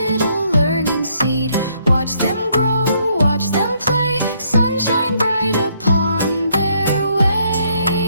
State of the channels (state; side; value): inverted; both; correlation -0.70